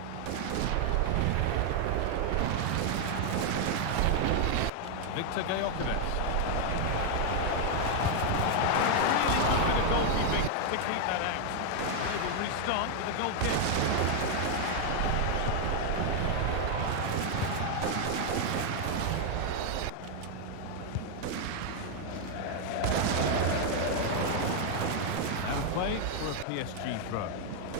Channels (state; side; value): different; both; correlation 0.00